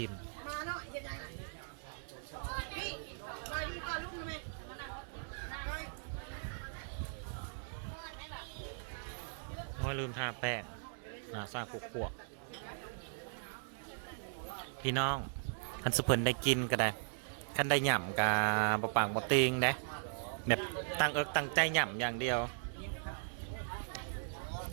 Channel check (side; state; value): left; silent; 52 dB below the other